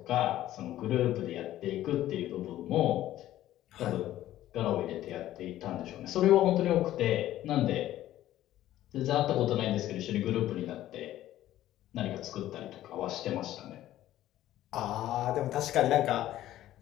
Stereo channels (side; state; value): right; quieter; 13.7 dB